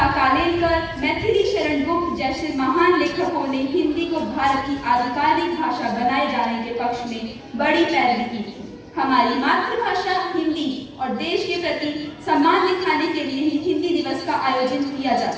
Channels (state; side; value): identical; both; correlation 1.00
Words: कालेलकर, मैथिली शरण गुप्त जैसे महान लेखकों ने हिंदी को भारत की आधिकारिक भाषा बनाए जाने के पक्ष में बड़ी पैरवी की थी। हमारी मातृभाषा हिंदी और देश के प्रति सम्मान दिखाने के लिए ही हिंदी दिवस का आयोजन किया